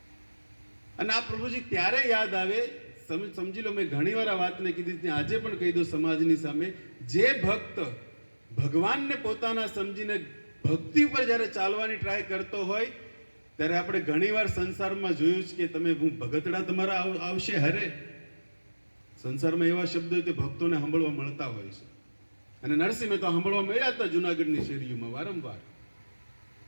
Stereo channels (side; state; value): both; inverted; correlation -1.00